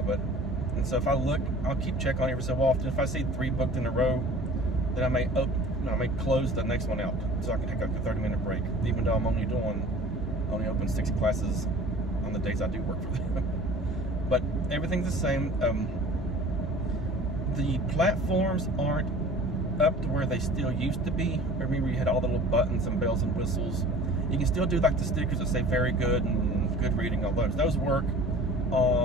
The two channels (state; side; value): normal; both; correlation 0.45